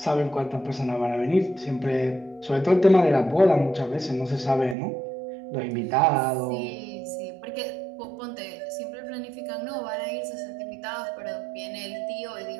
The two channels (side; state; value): left; drops out; at 4.8 s